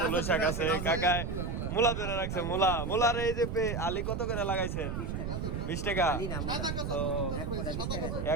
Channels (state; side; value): noise; right; rumble, 3 dB below the sound